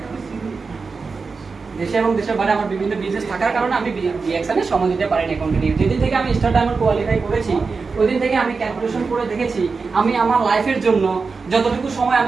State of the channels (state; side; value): quieter; left; 4.6 dB